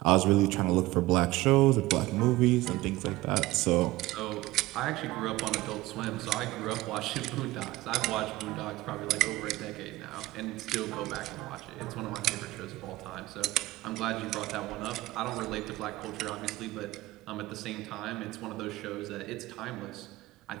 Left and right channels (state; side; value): quieter; left; 18.4 dB